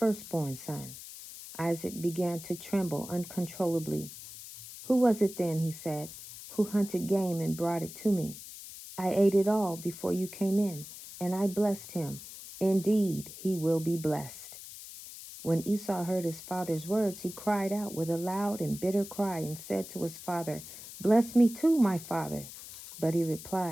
son." Isaac began to tremble uncontrollably. "Who was it then," he said, "who hunted game and brought it to me? I ate it all before you came in, and I blessed him. Indeed, he will be blessed." When Esau heard his father's words, he cried out with a loud and bitter cry and said to his father, "Bless me too, my father." But he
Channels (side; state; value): left; noise; hiss, 13 dB below the sound